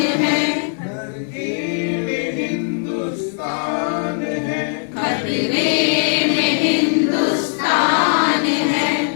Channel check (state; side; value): silent; right; 61 dB below the other